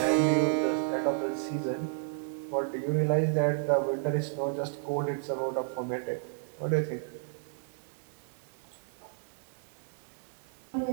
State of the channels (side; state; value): left; silent; digital silence